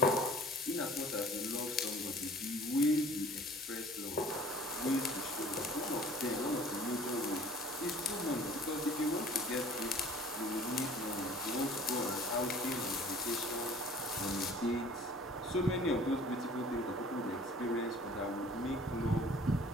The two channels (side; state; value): both; normal; correlation 0.50